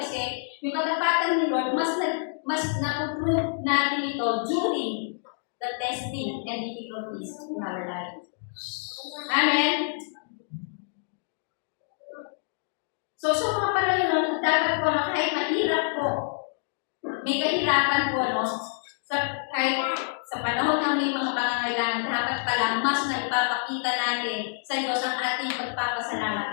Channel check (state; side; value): silent; right; digital silence